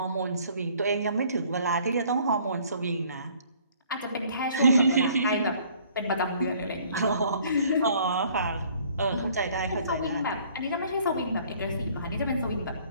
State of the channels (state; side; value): inverted; both; correlation -0.57